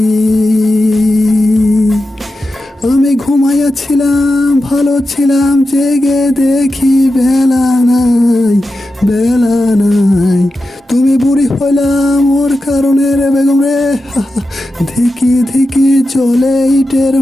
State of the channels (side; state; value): both; normal; correlation 0.91